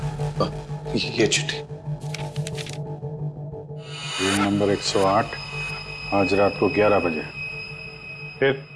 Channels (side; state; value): both; identical; correlation 1.00